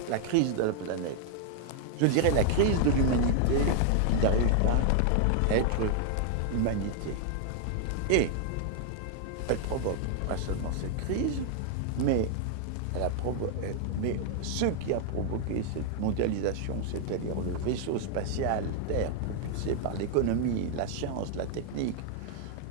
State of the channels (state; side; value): different; both; correlation 0.00